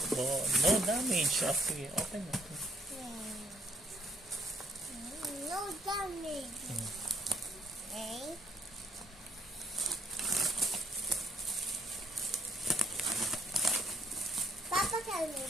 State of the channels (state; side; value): normal; both; correlation 0.67